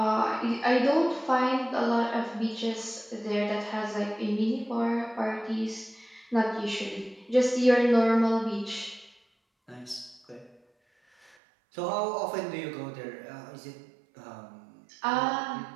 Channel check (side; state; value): left; drops out; at 11.4 s